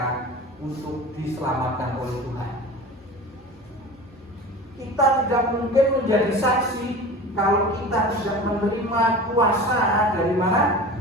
untuk diselamatkan oleh Tuhan. Kita tidak mungkin menjadi saksi kalau kita tidak menerima kuasa dari mana?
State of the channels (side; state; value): both; normal; correlation 0.35